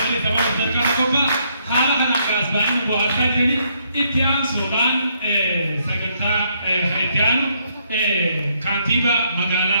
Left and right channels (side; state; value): both; inverted; correlation -0.72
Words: sababa sarkana kophaa haala kanaan kaasbaanii bu'aataa jedhanii itti aansuudhaan sagantaa itti aanu kantiibaa